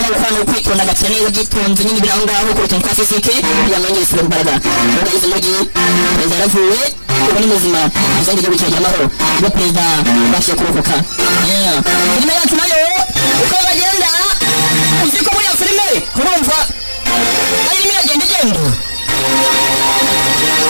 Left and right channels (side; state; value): both; inverted; correlation -1.00